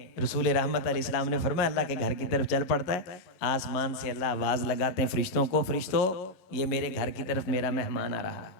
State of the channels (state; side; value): late; right; 11 ms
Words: रसूल रहमत अलैहिस्सलाम ने फरमाया अल्लाह के घर की तरफ चल पड़ता है, आसमान से अल्लाह आवाज लगाते हैं फरिश्तों को, फरिश्तों ये मेरे घर की तरफ मेरा मेहमान आ रहा है,